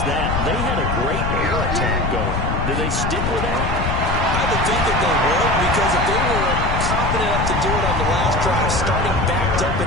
that. They had a great air attack going. Do they stick with that? I would think that they would, because if they were confident enough to do it on the last drive, starting backed up in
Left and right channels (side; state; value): left; noise; rumble, 2 dB below the sound